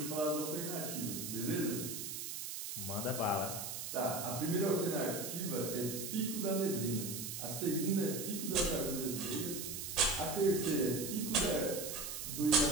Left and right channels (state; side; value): noise; right; hiss, 6 dB below the sound